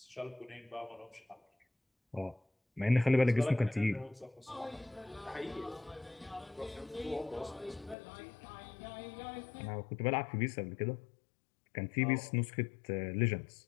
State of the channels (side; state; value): right; drops out; at 8.0 s